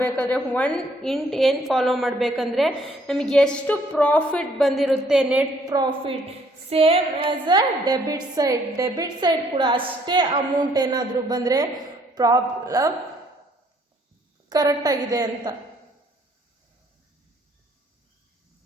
ಏನು ಫಾಲೋ ಮಾಡಬೇಕಂದ್ರೆ ನಮಗೆ ಎಷ್ಟು ಪ್ರಾಫಿಟ್ ಬಂದಿರುತ್ತೆ, net profit same as a debit side ಕೂಡ ಅಷ್ಟೇ ಅಮೌಂಟ್ ಏನಾದರೂ ಬಂದರೆ ಪ್ರಾಬ್ಲಮ್ ಕರೆಕ್ಟಾಗಿದೆ ಅಂತ.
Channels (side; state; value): both; normal; correlation 0.64